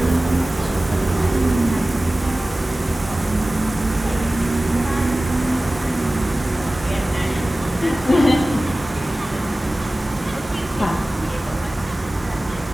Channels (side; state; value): both; normal; correlation 0.97